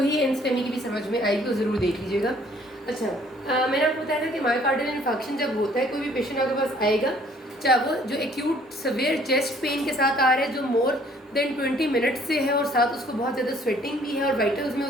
ही एनस्टेमी की भी समझ में आएगी, तो ज़रूर देख लीजिएगा। अच्छा, मैंने आपको बताया था कि मायोकार्डियल इन्फेक्शन जब होता है, कोई भी पेशेंट आपके पास आएगा, चाहे वो जो एक्यूट सवेयर चेस्ट पेन के साथ आ रहा है जो मोर देन 20 मिनट से है और साथ उसको बहुत ज़्यादा स्वेटिंग भी है और वाइटल्स में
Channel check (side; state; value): both; normal; correlation 0.59